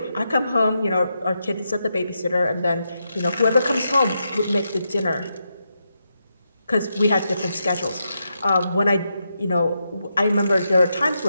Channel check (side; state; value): both; inverted; correlation -0.85